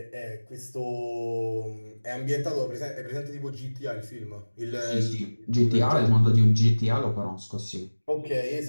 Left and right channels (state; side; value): inverted; both; correlation -1.00